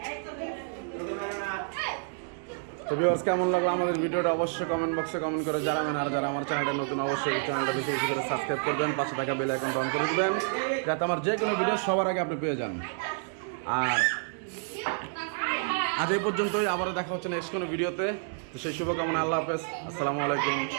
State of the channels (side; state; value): left; silent; 58 dB below the other